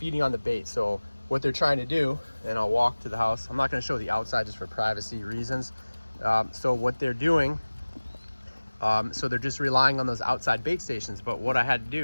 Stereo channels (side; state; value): both; inverted; correlation -1.00